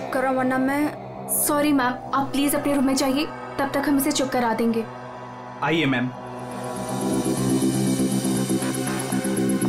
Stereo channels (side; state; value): both; identical; correlation 1.00